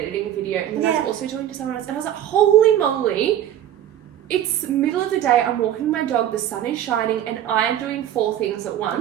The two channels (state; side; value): quieter; left; 11.3 dB